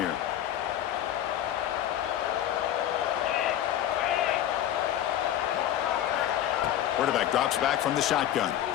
Quarterback drops back from the shotgun.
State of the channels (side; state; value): right; quieter; 11.5 dB